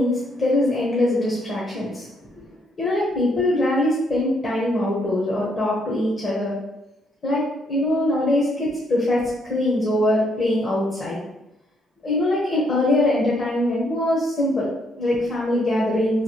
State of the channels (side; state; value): both; normal; correlation 0.72